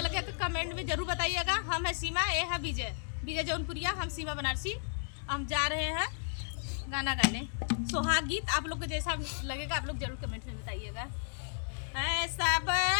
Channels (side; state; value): right; silent; digital silence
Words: तो कमेंट में जरूर बताइएगा। हम है सीमा, ये है विजय, विजय जौनपुरिया, हम सीमा बनारसी। हम जा रहे हैं गाना गाने सुहाग गीत। आप लोग को जैसा लगेगा आप लोग जरूर कमेंट में बताइएगा। ऐसा